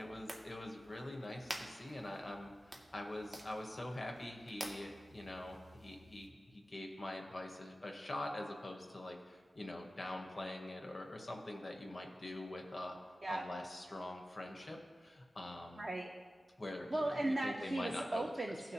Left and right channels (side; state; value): both; normal; correlation 0.95